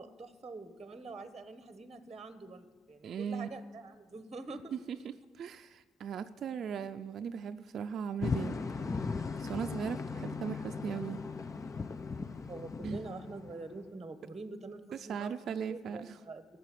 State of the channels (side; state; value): both; normal; correlation 0.76